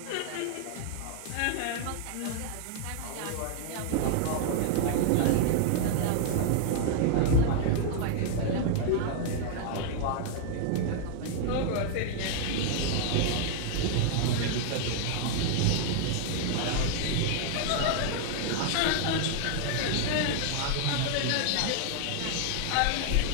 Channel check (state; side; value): different; both; correlation 0.00